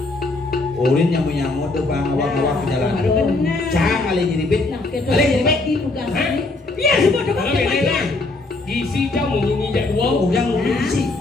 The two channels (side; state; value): right; quieter; 3.2 dB